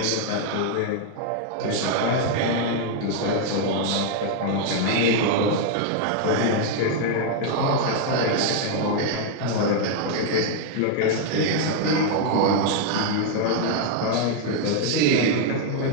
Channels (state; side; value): different; both; correlation 0.00